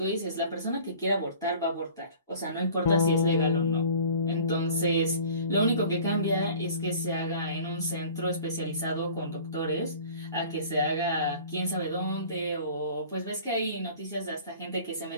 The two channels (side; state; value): both; inverted; correlation -0.46